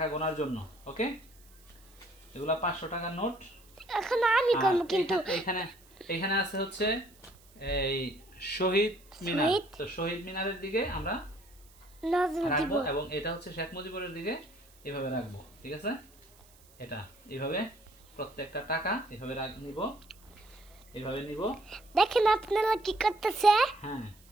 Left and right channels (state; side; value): noise; right; hiss, 27 dB below the sound